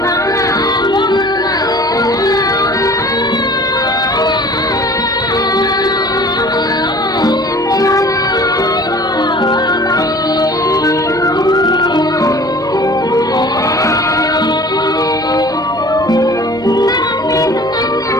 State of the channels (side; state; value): left; noise; hum, 29 dB below the sound